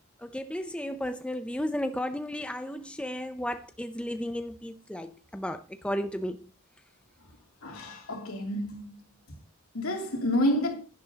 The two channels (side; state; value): both; normal; correlation 0.56